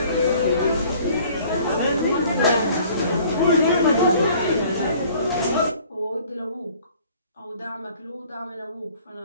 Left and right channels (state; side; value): inverted; both; correlation -0.54